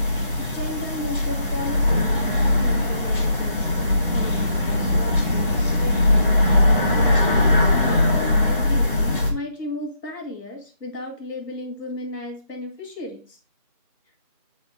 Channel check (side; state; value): both; inverted; correlation -0.77